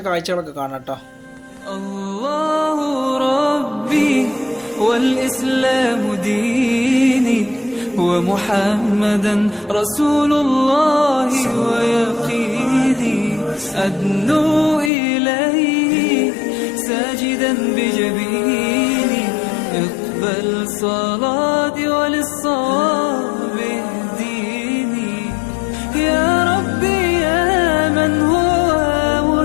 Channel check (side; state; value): right; drops out; at 14.9 s